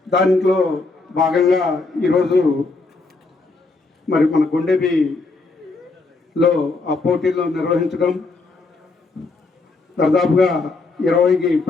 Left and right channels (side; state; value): right; quieter; 3.7 dB